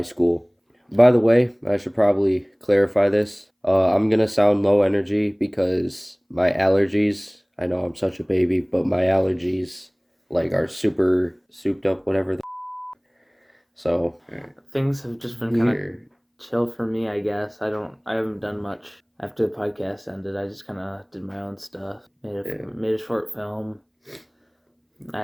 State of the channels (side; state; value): both; identical; correlation 1.00